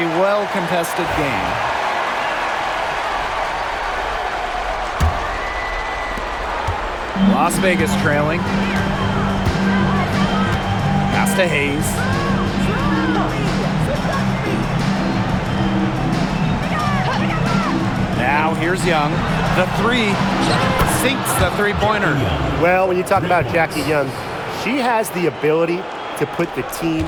well-contested game. Las Vegas trailing. Pass to Hayes. Now here's Young. The 3 sinks the three-pointer. Well, when you talk about Jackie Young, she has the ability to put the team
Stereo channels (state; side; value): identical; both; correlation 1.00